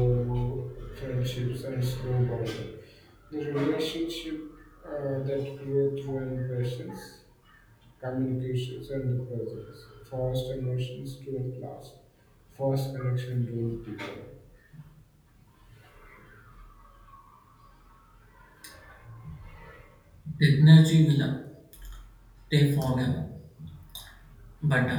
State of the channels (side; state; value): both; identical; correlation 1.00